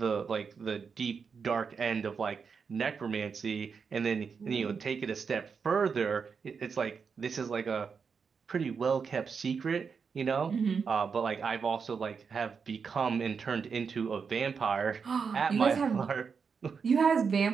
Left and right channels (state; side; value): quieter; left; 5.8 dB